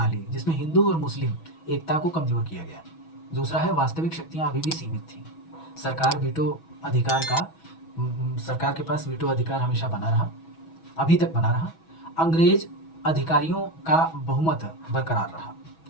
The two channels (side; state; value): right; late; 6.2 ms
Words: जिसमें हिंदू और मुस्लिम एकता को कमजोर किया गया। दूसरा है वास्तविक शक्तियां अभी भी सीमित थीं। सरकार सरकार के पास वीटो अधिकार हमेशा बना रहा, अभी तक बना रहा। अंग्रेज अधिकारियों का बहुमत बरकरार रहा।